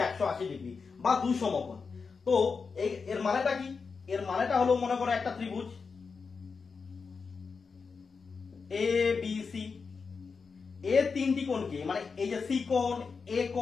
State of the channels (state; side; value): quieter; right; 5.1 dB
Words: 180 ডিগ্রি বা দুই সমকোণ। তো এর মানেটা কি? এর মানেটা হলো, মনে করো একটা ত্রিভুজ এ বি সি, এর তিনটি কোণকে, মানে এই যে সি কোণ, এ